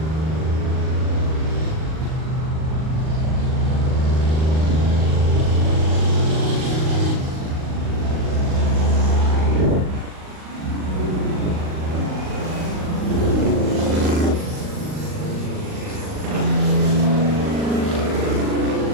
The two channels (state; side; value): late; left; 38 ms